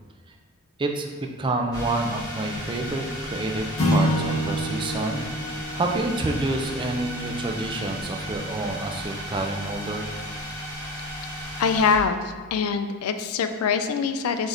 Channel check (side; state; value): both; normal; correlation 0.32